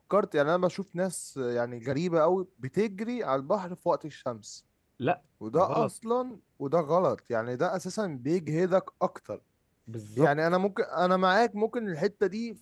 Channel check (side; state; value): both; identical; correlation 1.00